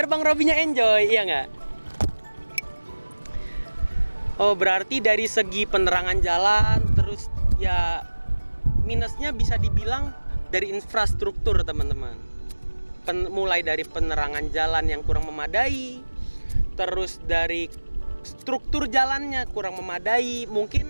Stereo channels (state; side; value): inverted; both; correlation -1.00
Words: Bang Robinya enjoy, iya nggak? Oh berarti dari segi penerangan jalan, terus ya minusnya bisa dibilang dari infrastruktur teman-teman. Mulai dari penerangan jalan yang kurang memadai, terus dari struktur jalannya kurang memadai, mungkin